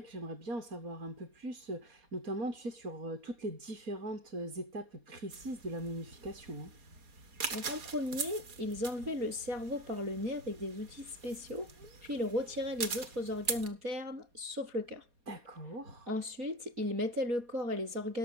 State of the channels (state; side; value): late; left; 4.2 ms